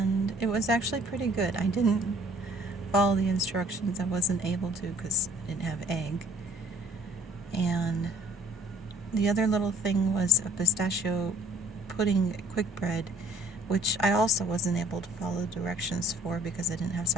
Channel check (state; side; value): normal; both; correlation 0.56